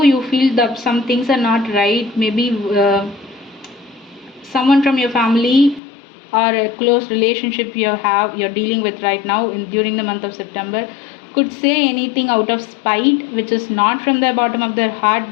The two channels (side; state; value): right; drops out; at 5.8 s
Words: you feel that some things are not right, maybe someone from your family or a close relationship you're dealing with right now during the month of September could say anything out of spite, which is not from the bottom of their